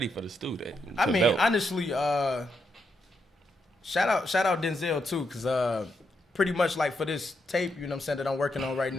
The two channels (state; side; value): normal; both; correlation 0.81